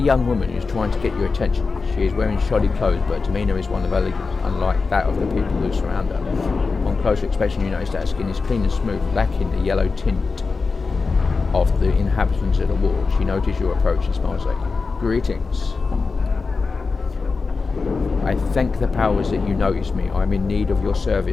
woman who's trying to get your attention. She is wearing shoddy clothes, but her demeanour is one of elegance, unlike that of the people who surround her. On closer inspection, you notice that her skin is clean and smooth, lacking the yellow tint of the inhabitants of the ward. She notices your approach and smiles at you. Greetings. I thank the powers that you notice me. I am in need of your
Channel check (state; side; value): quieter; right; 4.4 dB